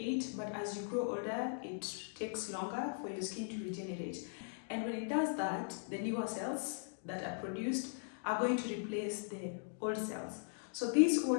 but as you grow older it takes longer for your skin to regenerate. And when it does that, the newer cells that are produced are going to replace the old cells. So these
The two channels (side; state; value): right; silent; digital silence